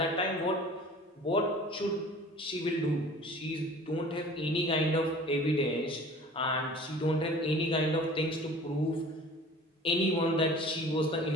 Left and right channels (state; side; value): normal; both; correlation 0.45